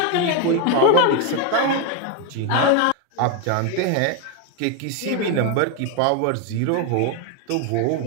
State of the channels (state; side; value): different; both; correlation 0.01